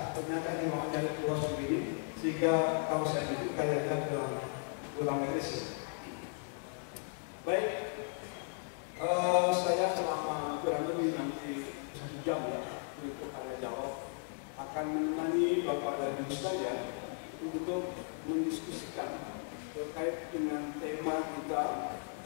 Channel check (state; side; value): silent; right; 54 dB below the other